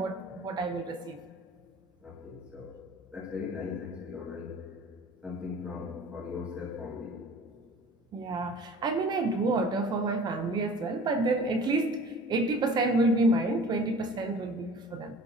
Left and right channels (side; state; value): both; normal; correlation 0.45